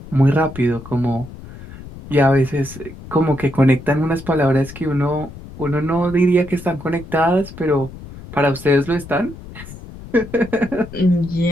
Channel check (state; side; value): noise; left; rumble, 15 dB below the sound